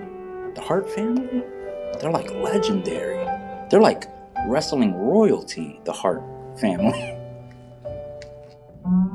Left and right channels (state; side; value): identical; both; correlation 1.00